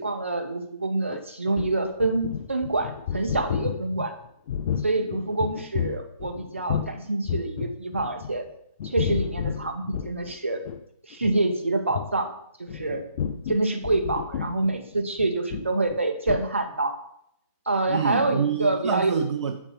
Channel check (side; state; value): both; inverted; correlation -0.69